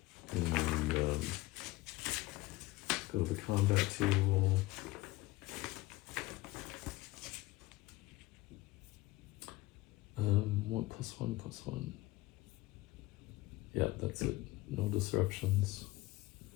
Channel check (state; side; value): quieter; right; 19.3 dB